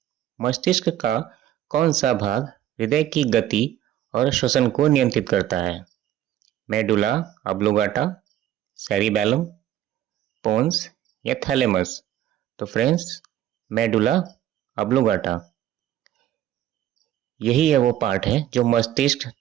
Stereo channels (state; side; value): quieter; left; 12.2 dB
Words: मस्तिष्क का कौन सा भाग हृदय की गति और श्वसन को नियंत्रित करता है? मेडुला ऑब्लोंगाटा, सेरिबेलम, पोन्स या थैलेमस? तो फ्रेंड्स, मेडुला ऑब्लिंगेटा। यही है वो पार्ट है जो मस्तिष्क